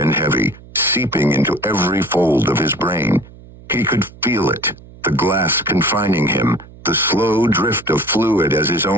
heavy, seeping into every fold of his brain. He could feel it, the glass confining him, the slow drift of fluid as his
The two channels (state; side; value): noise; right; hum, 21 dB below the sound